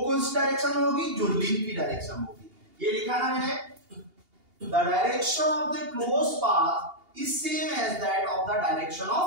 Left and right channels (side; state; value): left; late; 2.8 ms